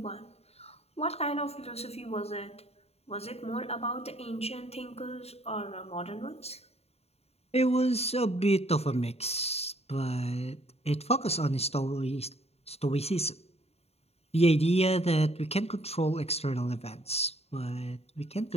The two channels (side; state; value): right; late; 0.30 ms